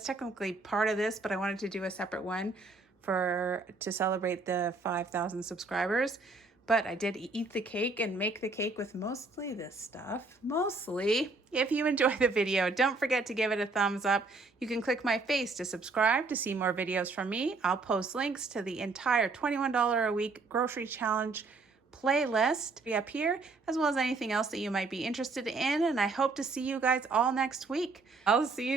technically part of this, but I wanted to do a separate one to celebrate the 5,000 subscribers. But I did eat the cake and make the cake with mostly this stuff. Mostly. If you enjoyed the video, don't forget to give it a thumbs up. You can click my face to subscribe to see more videos from me. I'll post links to the entire $21 a week grocery challenge playlist up here, as well as anything else that you might be interested in. And I hope to see you guys all next week. I'll see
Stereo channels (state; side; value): quieter; left; 3.7 dB